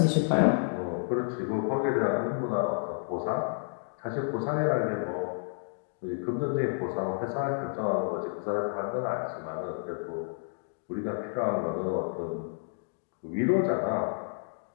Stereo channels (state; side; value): silent; right; digital silence